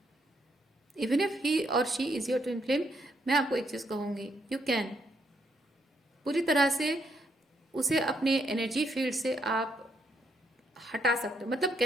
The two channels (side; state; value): both; normal; correlation 0.74